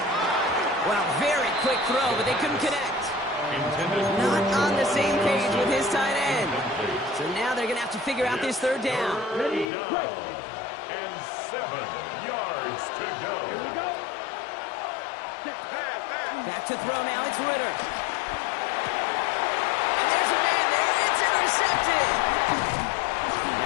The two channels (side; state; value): right; drops out; at 9.7 s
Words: Well, very quick throw, but they couldn't connect. Not on the same page with his tight end. So now they're going to have to figure out this 3rd down. Ready, play. And 7 yards to go. Here we go. Back to throw now. It's Ritter. And there's a man there. It's intercepted.